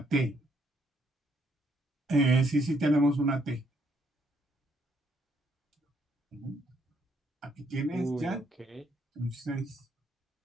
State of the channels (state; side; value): normal; both; correlation 0.71